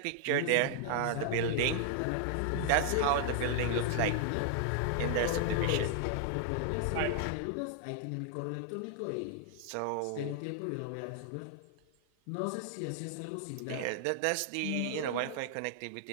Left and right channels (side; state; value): both; different; correlation 0.00